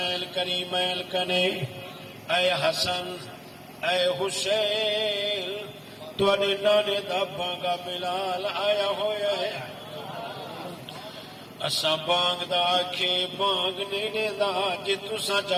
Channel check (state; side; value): identical; both; correlation 1.00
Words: کریمین کنے اے حسن اے حسین توانے نانے دا بانگا بلال آیا ہویا ہے اسا بانگ دا آکھے بانگ نینے دا جی تسا